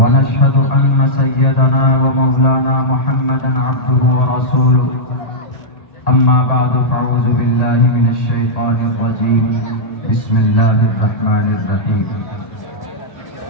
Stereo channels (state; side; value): late; right; 1.8 ms